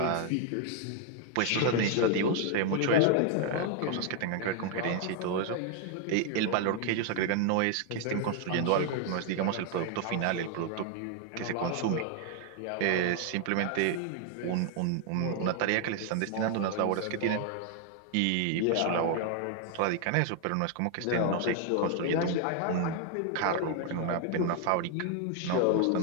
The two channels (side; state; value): both; different; correlation 0.00